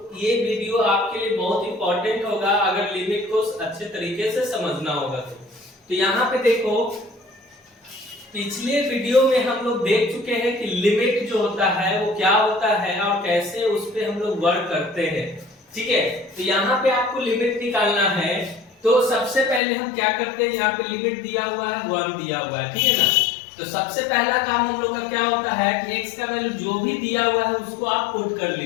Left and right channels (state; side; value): drops out; right; at 19.6 s